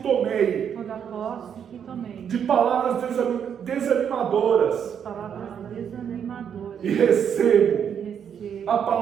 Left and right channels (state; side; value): quieter; left; 8.1 dB